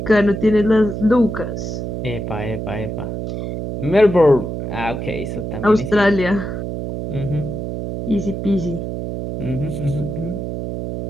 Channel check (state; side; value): noise; right; hum, 5 dB below the sound